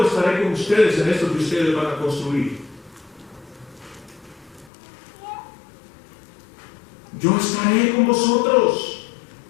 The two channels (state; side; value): drops out; right; at 4.7 s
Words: estaré con ustedes en esto que ustedes van a construir. Yo estaré con vosotros.